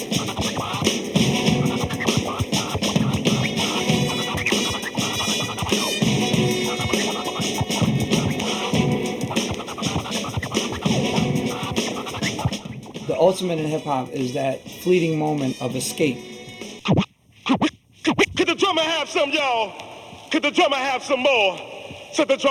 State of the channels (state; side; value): identical; both; correlation 1.00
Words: The ultimate in hip-hop is that fleeting moment of escape. Could the drummer have some, y'all? Could the drummer have some more? Said the